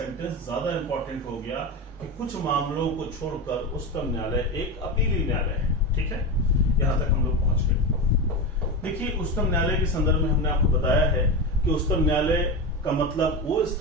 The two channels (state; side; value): normal; both; correlation 0.19